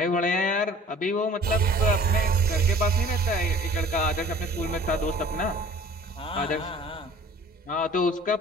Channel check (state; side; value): normal; both; correlation 0.49